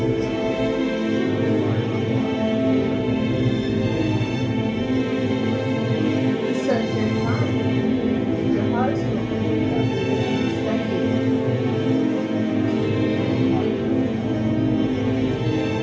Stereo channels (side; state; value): both; identical; correlation 1.00